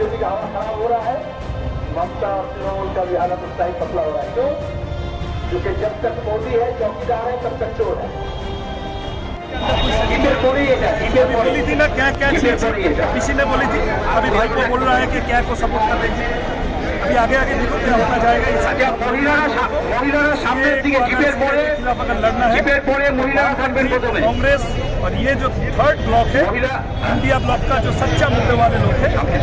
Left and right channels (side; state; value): both; identical; correlation 1.00